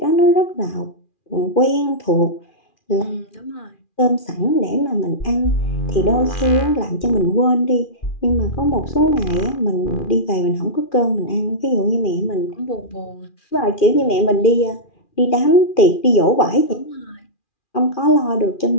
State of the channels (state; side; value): late; right; 2.4 ms